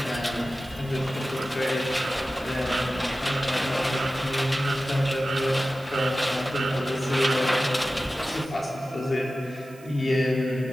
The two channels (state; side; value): noise; right; hiss, 25 dB below the sound